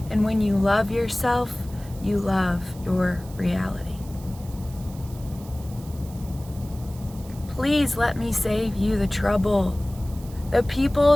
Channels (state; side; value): noise; right; hiss, 21 dB below the sound